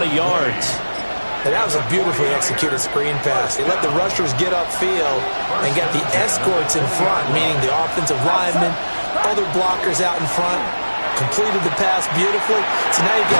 yards. And that was a beautifully executed screen pass. They let the rushers get upfield and got the escorts in front, meaning the offensive linemen, other blockers out in front, completed the pass beautifully. So now you've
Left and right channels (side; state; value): both; inverted; correlation -1.00